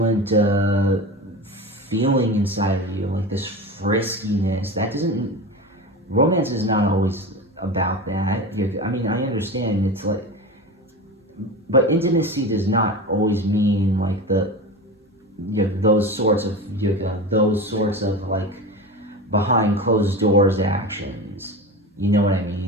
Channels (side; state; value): both; normal; correlation 0.27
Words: feeling inside of you, like this friskiness. Romance is not always about that. I mean, I understand it's like, but intimacy does not always mean like those sorts of like behind closed doors actions. You know what I